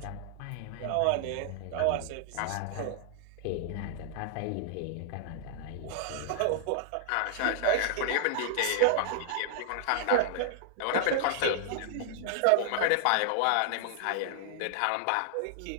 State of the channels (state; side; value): different; both; correlation -0.01